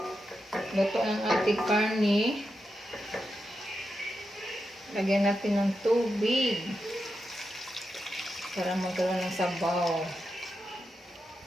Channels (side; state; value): both; normal; correlation 0.88